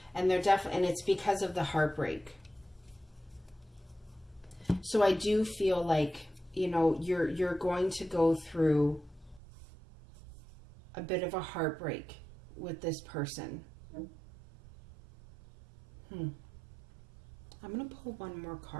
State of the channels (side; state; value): left; drops out; at 9.4 s